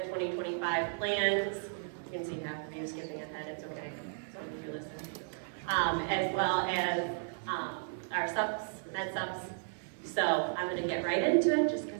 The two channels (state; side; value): silent; left; 55 dB below the other